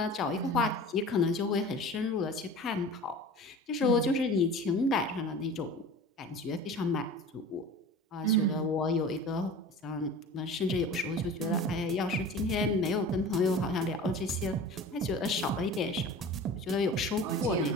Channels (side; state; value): both; normal; correlation 0.38